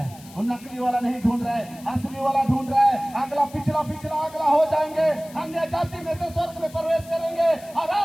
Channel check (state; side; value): noise; left; hiss, 21 dB below the sound